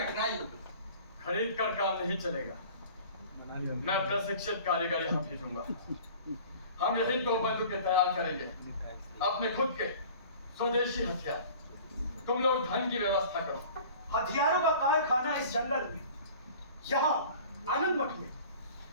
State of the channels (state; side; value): inverted; both; correlation -0.45